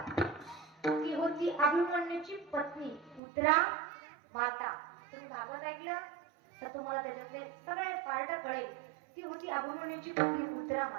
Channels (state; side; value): drops out; left; at 3.2 s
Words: ती होती अभिमन्यूची पत्नी उत्तरा माता. तुम्ही भागवत ऐकलं तर तुम्हाला त्याच्यातले सगळे पार्ट कळेल. ती होती अभिमन्यूची पत्नी उत्तरा